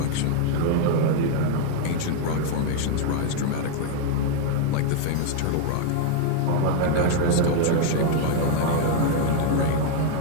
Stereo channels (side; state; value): both; different; correlation 0.00